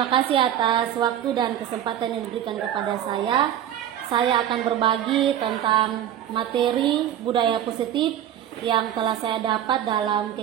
kasih atas waktu dan kesempatan yang diberikan kepada saya. Saya akan berbagi tentang materi budaya positif yang telah saya dapat dalam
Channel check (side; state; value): left; quieter; 10.7 dB